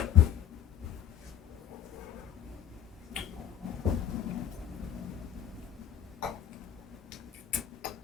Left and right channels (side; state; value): right; quieter; 10.1 dB